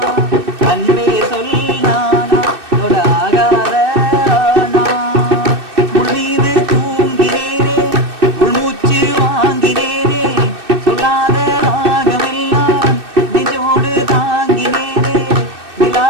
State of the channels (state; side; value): late; left; 2.6 ms